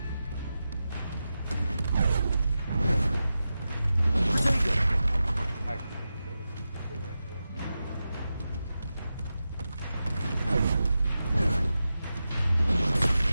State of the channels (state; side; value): inverted; both; correlation -0.92